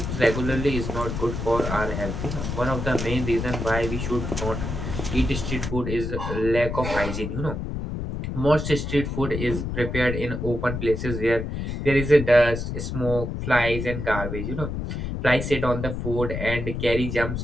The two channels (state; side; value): noise; left; rumble, 4 dB below the sound